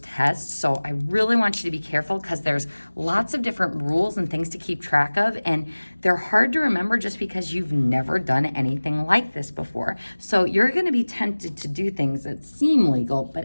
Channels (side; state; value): both; inverted; correlation -1.00